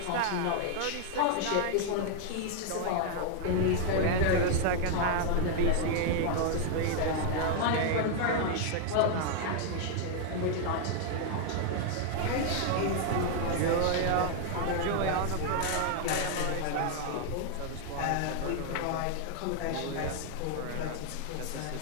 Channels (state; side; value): different; both; correlation 0.00